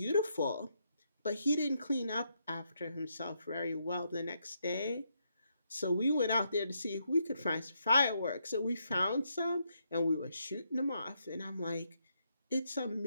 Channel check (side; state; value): both; inverted; correlation -0.78